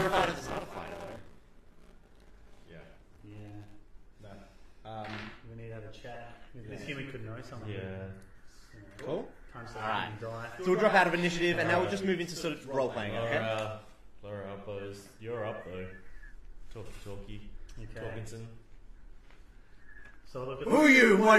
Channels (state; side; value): identical; both; correlation 1.00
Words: fighter, it's not a fighter, though. Yeah. Yeah. No. We need to have a chat. This human could know something. Yeah. Cool. Time to Alright. die. So we'll drop out of initiative, and now we'll just move into sort of role-playing, okay? Laura Uppos. You're up though. Talkie. Okay. Talkinson. So look, Who are you? What